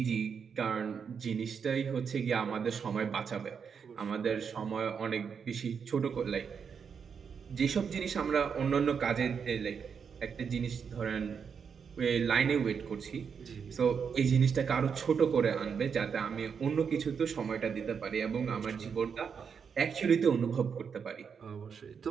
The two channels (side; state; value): left; quieter; 6.6 dB